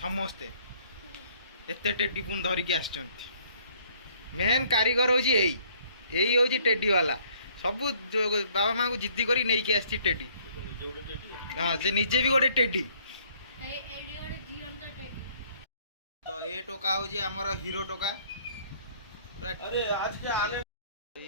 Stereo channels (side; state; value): both; inverted; correlation -0.61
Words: एते टेडी पुन धरिकी आछंती मेन कारीगर हूँ यही हूँ टेडी वाला सब बाबा माँ को जिद्दी करी नहीं के आसी टेडी हाँ से निजे भी गोटे टेडी तो ये टोका हूँ आमर हीरो टोका अरे आज के आने